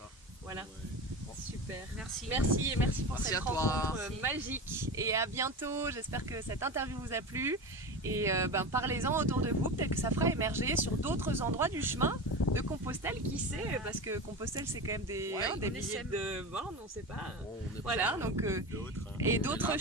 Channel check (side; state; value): both; normal; correlation 0.26